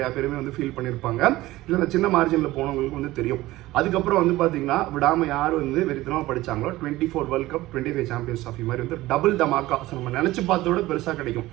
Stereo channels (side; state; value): left; quieter; 17.6 dB